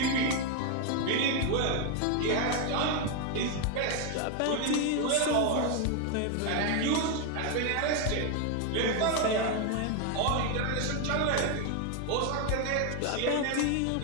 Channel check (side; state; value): both; different; correlation 0.01